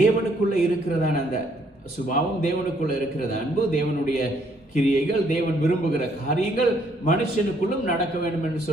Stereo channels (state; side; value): normal; both; correlation 0.68